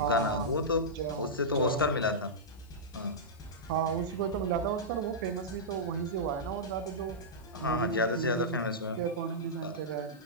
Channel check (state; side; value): noise; left; hiss, 29 dB below the sound